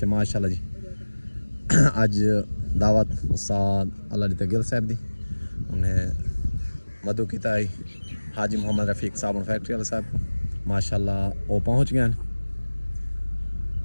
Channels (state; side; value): inverted; both; correlation -1.00